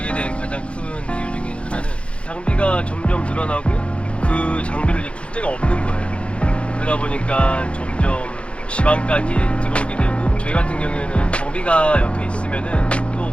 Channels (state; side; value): late; right; 0.060 ms